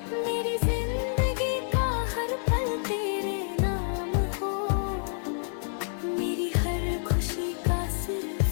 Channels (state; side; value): silent; right; 59 dB below the other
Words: मेरी जिंदगी का हर पल तेरे नाम हो, मेरी हर खुशी का